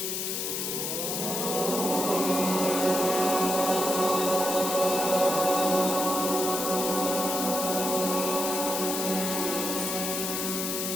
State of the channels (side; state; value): left; noise; hiss, 2 dB below the sound